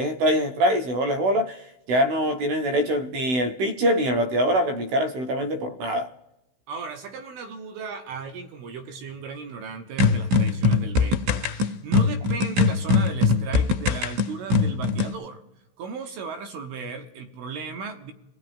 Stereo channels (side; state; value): left; late; 16 ms